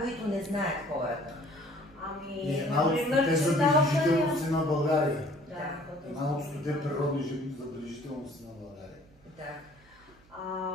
които не знаят хората. Една от стоте забележителности на България. Да. Една от стоте природни забележителности на България. Да.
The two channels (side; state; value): right; noise; hum, 29 dB below the sound